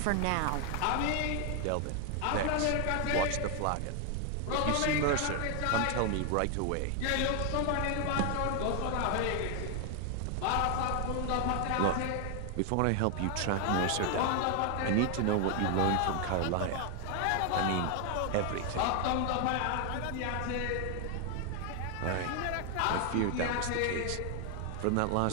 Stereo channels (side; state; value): both; different; correlation 0.00